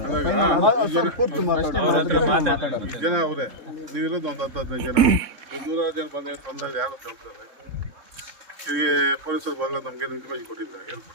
ಜನ ಅವರೇ ನೀವಿರೋದು ಒಂದು 10-15 ಜನ, 100 ಜನ ಬಂದಾಗ ಯಾರು ಕೇಳ್ತಾರೆ. ಈಗ ಪೊಲೀಸರು ಬಂದ ನಮ್ಗೆ ಇನ್ಫಾರ್ಮೇಶನ್ ಕೊಟ್ಟಿದ್ದಾರೆ, ಏನು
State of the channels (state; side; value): late; left; 3.7 ms